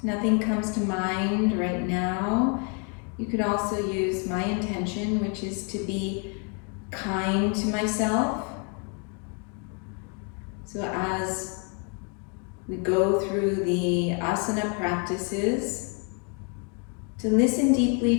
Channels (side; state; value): right; quieter; 37.8 dB